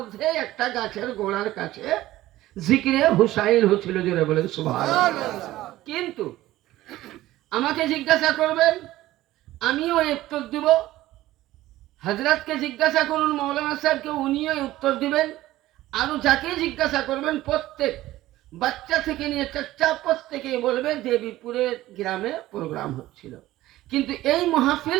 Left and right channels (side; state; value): left; quieter; 15.9 dB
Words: একটা গাছের গোড়ার কাছে জিকিরে হুসাইন হচ্ছিল, জোরে বলেন সুবহানাল্লাহ। কিন্তু আমাকে জিজ্ঞাসা করবেন, আমিও উত্তর দিব। হযরতকে জিজ্ঞাসা করুন, মৌলানা সাহেবকে, উনিও উত্তর দিবেন। আরো যাকে জিজ্ঞাসা করবেন, প্রত্যেক বাচ্চা থেকে নিয়ে চাচা প্রত্যেকে বলবে দেবীপুরের গ্রামে প্রোগ্রাম হচ্ছিল। কিন্তু এই